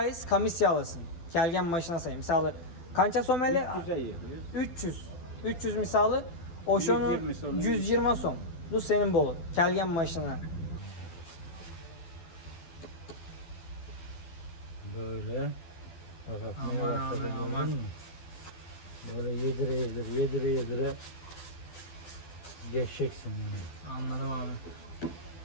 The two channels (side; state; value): right; late; 12 ms